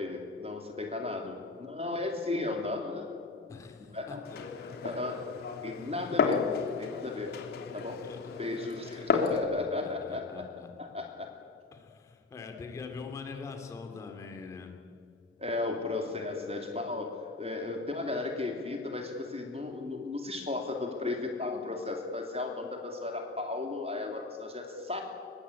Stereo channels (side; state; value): right; quieter; 3.4 dB